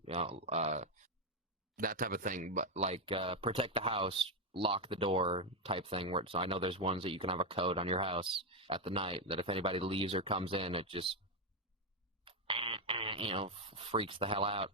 You know, that type of thing. But like protect the house, lock the door type thing. Where so I know there's ones that you can have a code on your house at the night that if anybody leaves or comes in, it just freaks the hell out.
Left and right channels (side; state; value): both; normal; correlation 0.05